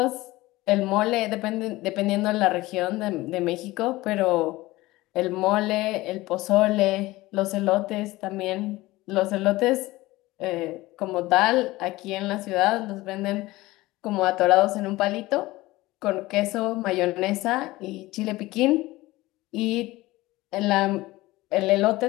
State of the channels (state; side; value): quieter; right; 19.1 dB